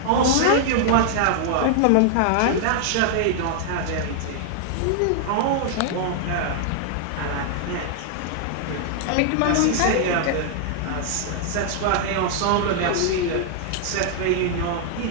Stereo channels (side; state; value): both; different; correlation 0.00